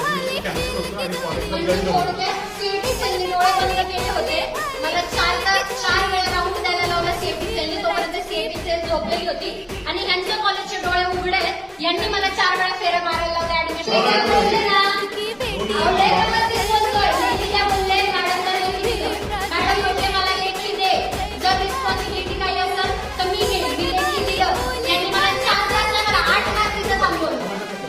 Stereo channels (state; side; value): identical; both; correlation 1.00